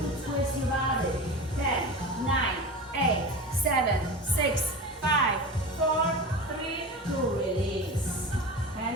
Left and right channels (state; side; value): normal; both; correlation 0.30